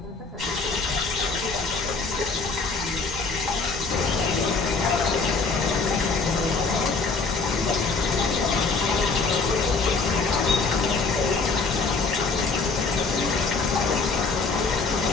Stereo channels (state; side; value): quieter; right; 4.2 dB